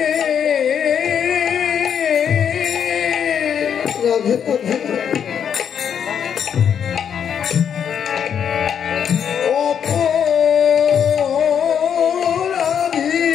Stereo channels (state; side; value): quieter; right; 8.1 dB